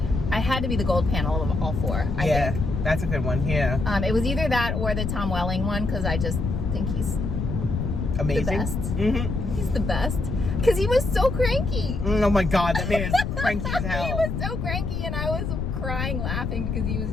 I had to be the gold panel of all four. I think. That's a good one. Yeah. It was either that or the Tom Welling one, because I just think he's amazing. The best. He's the best. Because he was so cranky. Oh my God, that man is cranky as hell. He was so cranky, and I was crying laughing because he was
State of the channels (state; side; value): noise; left; rumble, 2 dB below the sound